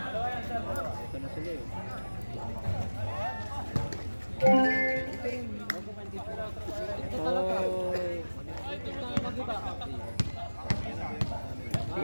Ito na sila eh. Ito talaga.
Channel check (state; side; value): inverted; both; correlation -1.00